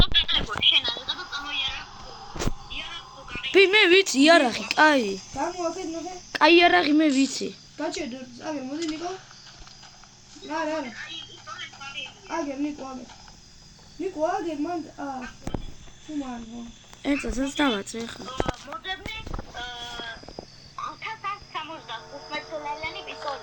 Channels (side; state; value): both; identical; correlation 1.00